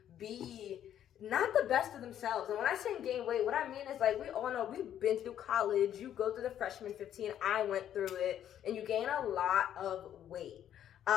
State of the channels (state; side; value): quieter; right; 10.5 dB